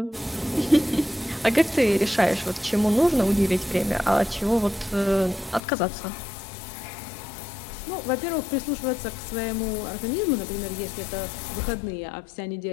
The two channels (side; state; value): right; drops out; at 5.6 s